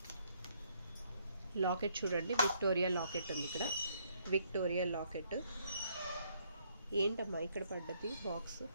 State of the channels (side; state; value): both; inverted; correlation -0.69